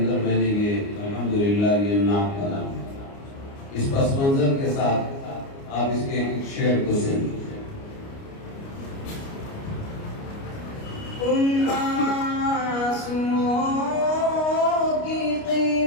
میں نے یہ الحمدللہ یہ نعت کا نام اس پس منظر کے ساتھ آپ اس کے ایک شعر کو سنیں۔ ان آنسوؤں کی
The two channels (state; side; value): late; right; 29 ms